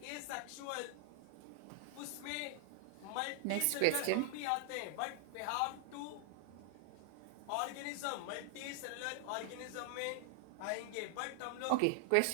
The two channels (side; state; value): both; different; correlation 0.00